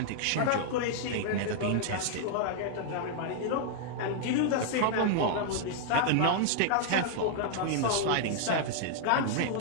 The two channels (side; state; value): both; different; correlation -0.01